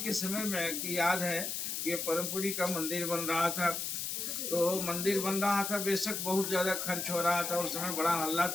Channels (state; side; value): noise; left; hiss, 3 dB below the sound